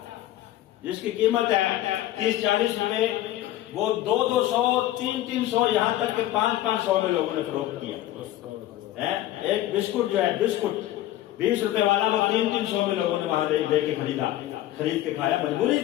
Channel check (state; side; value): quieter; right; 14.2 dB